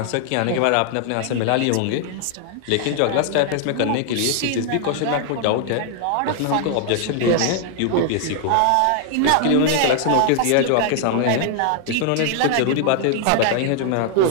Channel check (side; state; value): both; different; correlation 0.00